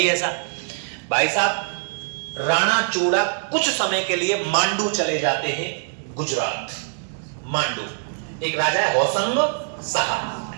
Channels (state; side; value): silent; left; digital silence